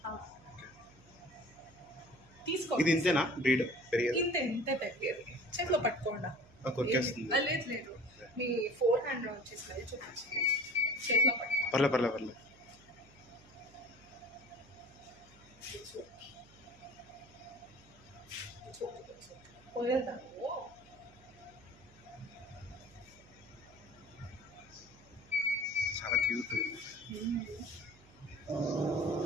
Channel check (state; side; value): noise; right; hum, 25 dB below the sound